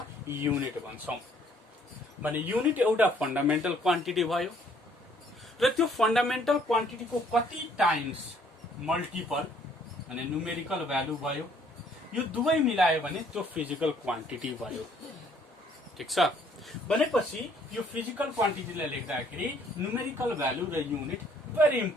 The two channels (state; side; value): normal; both; correlation 0.62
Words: युनिट भन्छौँ। भने युनिट एउटा फन्डामेन्टल क्वान्टिटी भयो र त्यो फन्डामेन्टल क्वान्टिटीको कति टाइम्स मल्टिपल भने न्युमेरिकल भ्यालु भयो, यो दुवै मिलायो भने त्यो फिजिकल क्वान्टिटी भयो। ठिक छ, भनेपछि यो फिजिकल क्वान्टिटीलाई लेख्दाखेरि न्युमेरिकल भ्यालु र युनिट भेरी